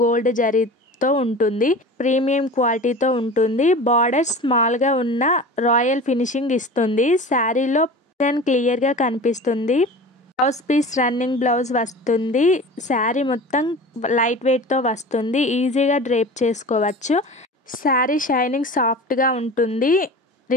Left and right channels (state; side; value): normal; both; correlation 0.36